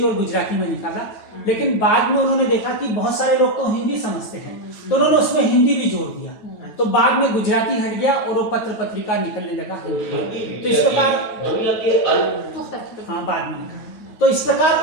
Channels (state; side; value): late; right; 9.2 ms